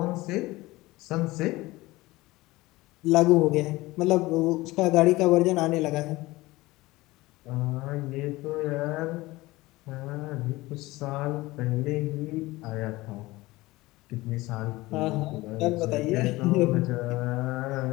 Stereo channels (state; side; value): quieter; right; 19.8 dB